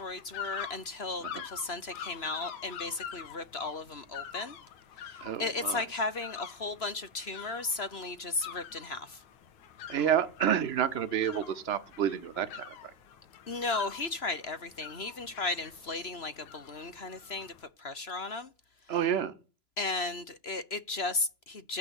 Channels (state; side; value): late; right; 3.0 ms